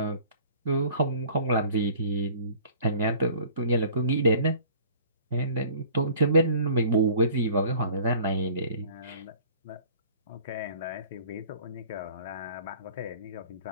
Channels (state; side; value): inverted; both; correlation -0.49